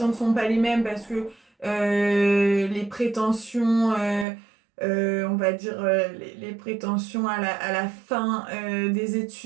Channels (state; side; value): drops out; left; at 4.2 s